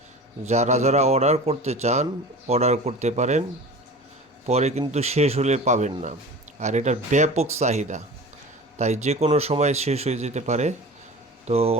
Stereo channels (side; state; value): both; normal; correlation 0.36